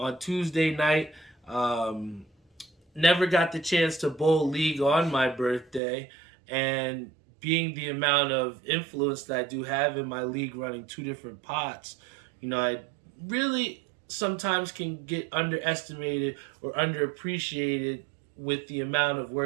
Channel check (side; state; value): left; drops out; at 5.8 s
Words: Tuesday night. Never got the chance to bowl League on my birthday, and being the amount of influence that I do have in my league running two different pots, I really sometimes can get underestimated or underappreciated with the amount of